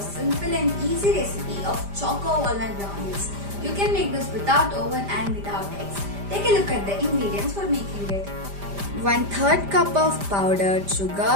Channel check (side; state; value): left; late; 5.0 ms